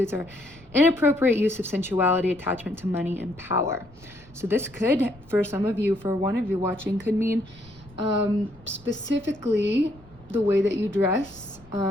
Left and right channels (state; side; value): noise; left; rumble, 25 dB below the sound